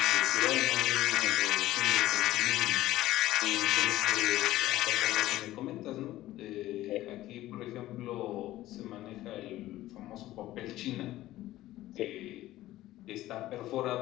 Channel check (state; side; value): quieter; right; 15.5 dB